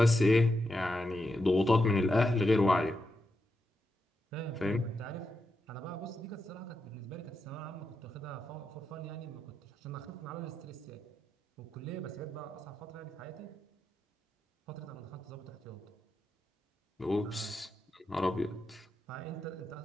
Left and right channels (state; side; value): normal; both; correlation 0.86